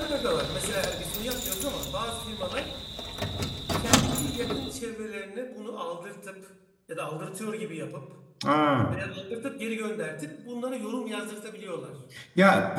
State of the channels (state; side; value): identical; both; correlation 1.00